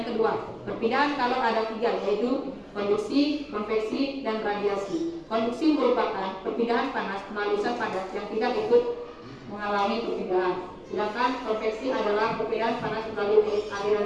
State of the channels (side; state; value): both; identical; correlation 1.00